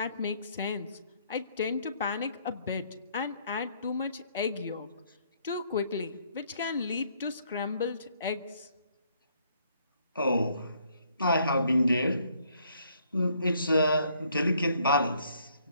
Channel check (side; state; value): both; inverted; correlation -0.67